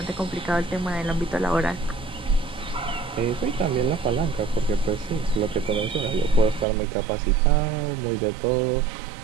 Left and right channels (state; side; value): drops out; left; at 6.7 s